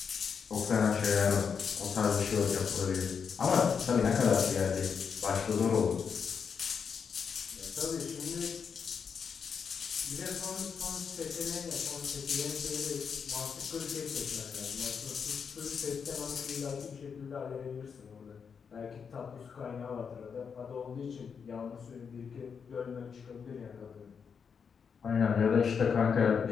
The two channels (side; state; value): right; quieter; 6.4 dB